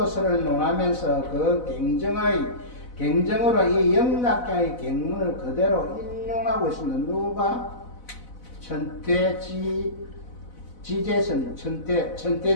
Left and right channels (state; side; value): late; right; 4.0 ms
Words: 논하면서 그 경정으로 이 영락경의 경문을 그대로 인용하고 있습니다. 누가? 천태지제스님,